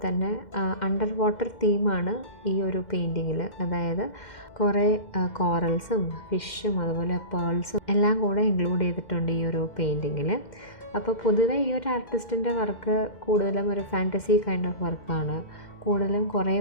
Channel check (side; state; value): right; late; 2.1 ms